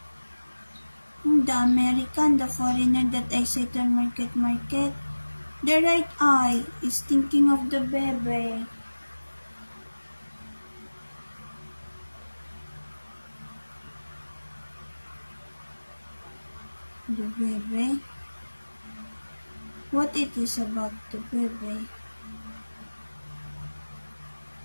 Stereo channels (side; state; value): both; inverted; correlation -1.00